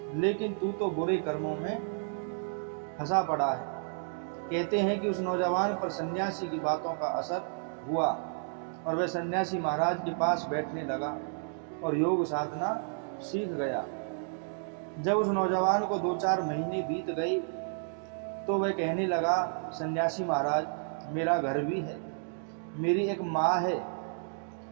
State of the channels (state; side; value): silent; left; digital silence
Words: लेकिन तू तो बुरे कर्मों में फंसा पड़ा है। कहते हैं कि उस नौजवान पर सन्यासी की बातों का असर हुआ और वह सन्यासी महाराज के पास बैठने लगा और योग साधना सीख गया। जब उस नौजवान को 2-4 महीने बीत गए तो वह कहने लगा, सन्यासी महाराज, मेरा घर भी है, मेरी एक माँ है,